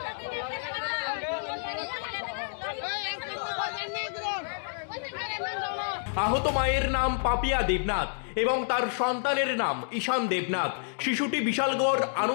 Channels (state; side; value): silent; right; digital silence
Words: আহত মায়ের নাম পাপিয়া দেবনাথ এবং তার সন্তানের নাম ঈশান দেবনাথ। শিশুটি বিশালগড়